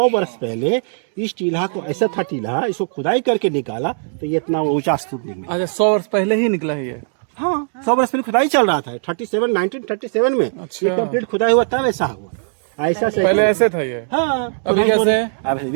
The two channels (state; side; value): silent; left; digital silence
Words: वर्ष पहले इस टीला को ऐसा था टीला, इसको खुदाई करके निकाला तो ये इतना ऊंचा स्तूप निकला। अच्छा 100 वर्ष पहले ही निकला है ये। हाँ 100 वर्ष पहले खुदाई चल रहा था 1937 में। अच्छा। ये कंप्लीट खुदाई हुआ तब ऐसा हुआ, ऐसा से पहले ऐसे था ये। हाँ अभी कैसे है? अब